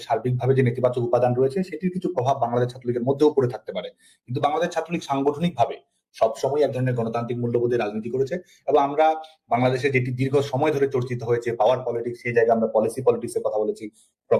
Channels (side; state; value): both; identical; correlation 1.00